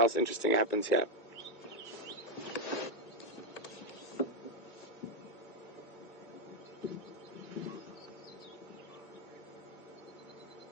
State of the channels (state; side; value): late; right; 2.1 ms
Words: interesting happens here.